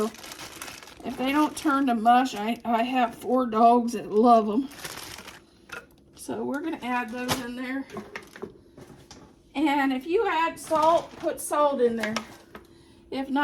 if they don't turn to mush, I have 4 dogs that love them. So we're going to add those in there. And if you add salt, put salt in there. If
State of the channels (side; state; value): both; identical; correlation 1.00